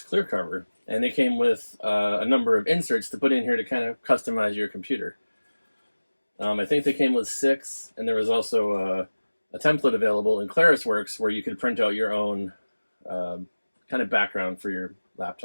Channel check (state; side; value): inverted; both; correlation -1.00